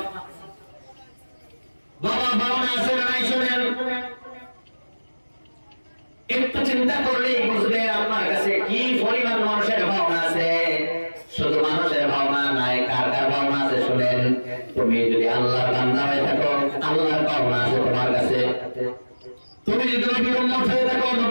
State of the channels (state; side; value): inverted; both; correlation -1.00